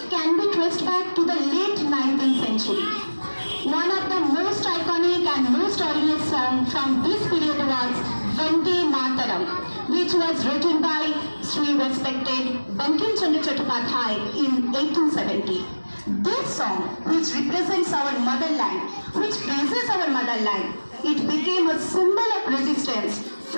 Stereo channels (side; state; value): both; inverted; correlation -1.00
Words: can be traced back to the late 19th century. One of the most iconic and most audience song from this period was Vande Mataram, which was written by Sri respected Bankim Chandra Chattopadhyay in 1870. This song, which represents our motherland, which praises our motherland, it became a symbol of resistance